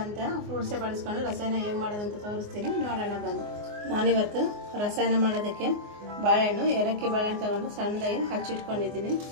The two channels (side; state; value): left; late; 24 ms